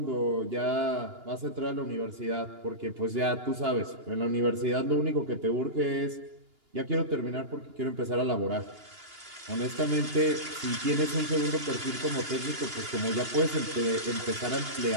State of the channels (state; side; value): late; left; 2.9 ms